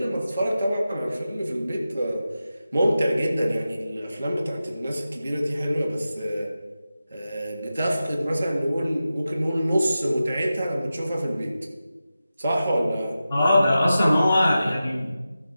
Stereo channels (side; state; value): both; inverted; correlation -0.93